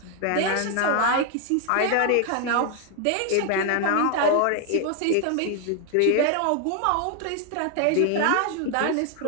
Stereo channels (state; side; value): different; both; correlation 0.00